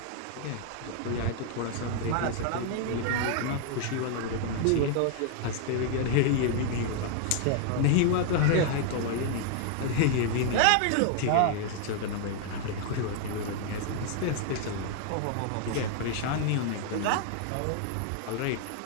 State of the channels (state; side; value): different; both; correlation 0.00